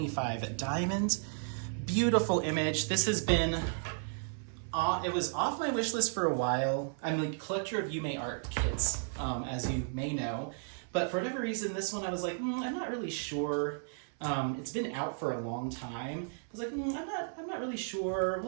diamonds. Beautiful image. This has been, it was off my wish list for a while. I'm a collector of Yuumei Art kits, as you may know. But for whatever reason, this one I was like, I'm not really sure. It's been out for a long time. I was like, I'm not really sure.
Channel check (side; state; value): left; silent; 55 dB below the other